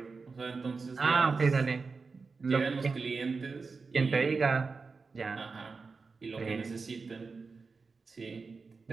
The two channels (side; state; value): left; quieter; 4.5 dB